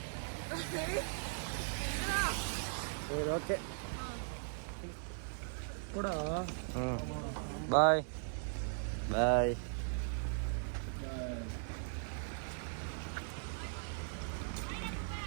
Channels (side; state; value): left; silent; digital silence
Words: சரி ஓகே கூட. Bye bye.